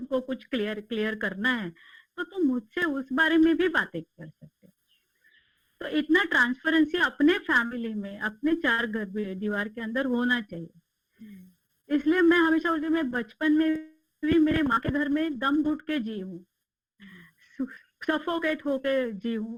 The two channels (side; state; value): both; identical; correlation 1.00